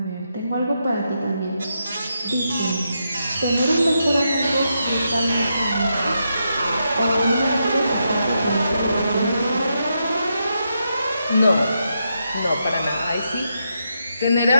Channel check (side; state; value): both; inverted; correlation -0.83